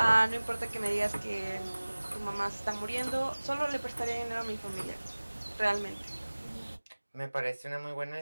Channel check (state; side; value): inverted; both; correlation -1.00